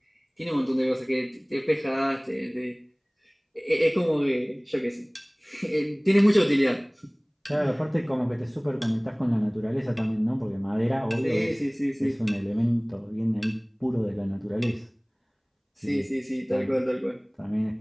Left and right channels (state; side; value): identical; both; correlation 1.00